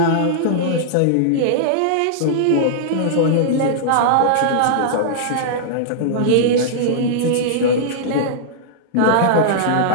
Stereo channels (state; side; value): different; both; correlation -0.02